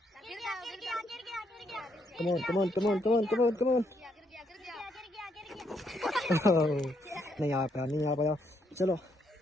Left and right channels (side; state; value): both; normal; correlation 0.75